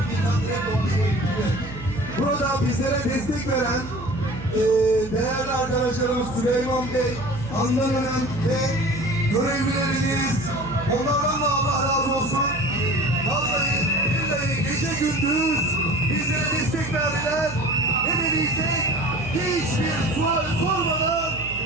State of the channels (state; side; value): noise; right; hum, 12 dB below the sound